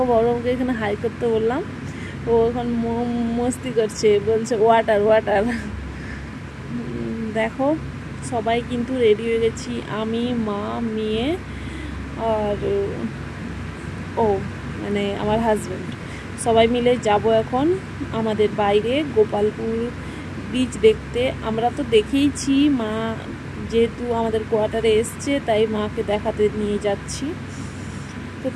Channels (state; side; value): identical; both; correlation 1.00